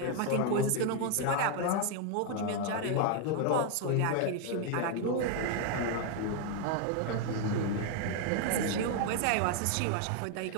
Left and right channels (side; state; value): both; different; correlation 0.01